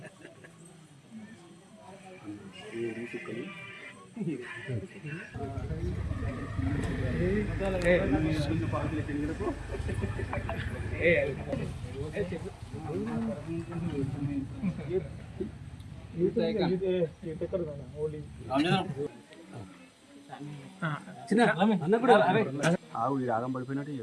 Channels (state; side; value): identical; both; correlation 1.00